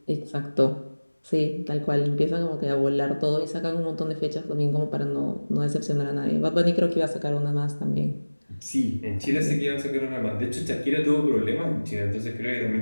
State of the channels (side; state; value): both; inverted; correlation -1.00